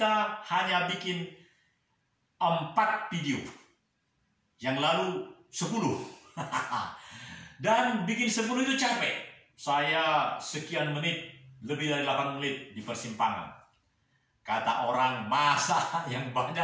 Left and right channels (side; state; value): both; identical; correlation 1.00